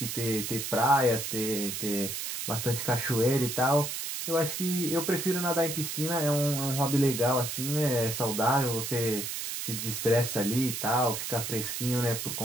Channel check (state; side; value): noise; right; hiss, 4 dB below the sound